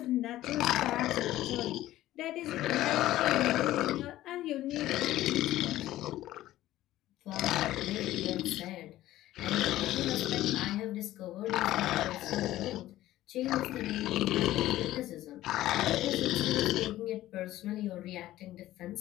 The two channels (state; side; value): quieter; right; 14.9 dB